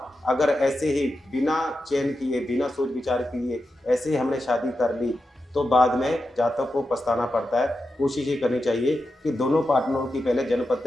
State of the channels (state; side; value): normal; both; correlation 0.89